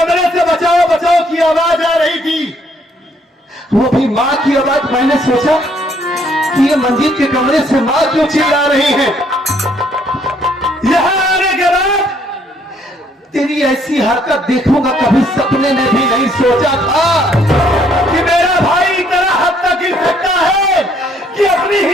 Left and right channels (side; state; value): both; normal; correlation 0.66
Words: से बचाओ बचाओ की आवाज आ रही थी, वो भी मां की आवाज। मैंने सोचा कि ये मंजीत के कमरे से मां क्यों चिल्ला रही है। यहां आने के बाद तेरी ऐसी हरकत देखूंगा कभी सपने में भी नहीं सोचा था कि मेरा भाई इतना हद तक गिर सकता है कि अपनी